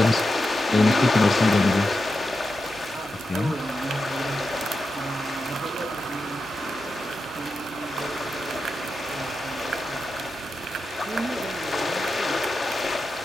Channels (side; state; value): both; normal; correlation 0.89